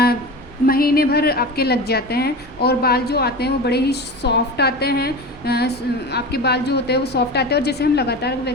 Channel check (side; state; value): both; normal; correlation 0.29